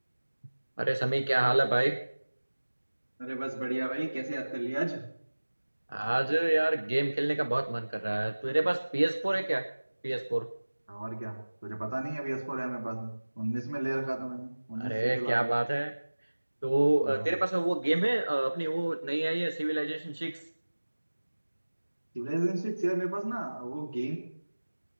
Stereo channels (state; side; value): inverted; both; correlation -1.00